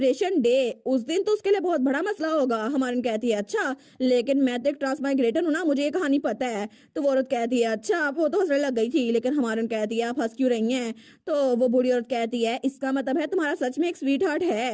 डे उस दिन तो उसके लिए बहुत बड़ा मसला होगा। हमारी कहती है अच्छा लेकिन मैं तो एक ट्रांसमाइग्रेटर हूँ ना, मुझे ये कहानी पता है। तो वो औरत कहती है अच्छा वो तो हंसने लग गई थी, लेकिन हमारी कहती है आप हंस क्यों रही हैं। तो वो बूढ़ी औरत कहती है इसका मतलब है तुम्हारा सच में एक स्वीट हार्ट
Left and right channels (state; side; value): identical; both; correlation 1.00